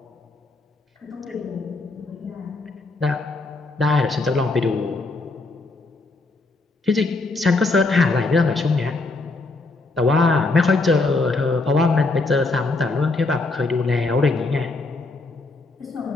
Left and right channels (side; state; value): right; quieter; 3.4 dB